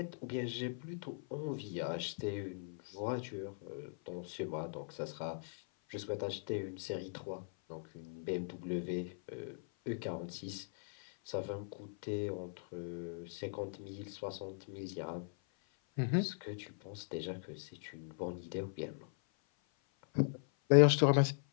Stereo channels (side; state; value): right; silent; 52 dB below the other